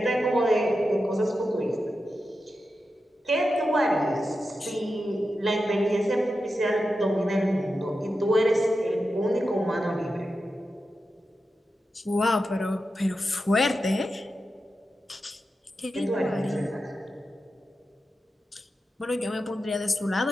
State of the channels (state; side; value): normal; both; correlation 0.90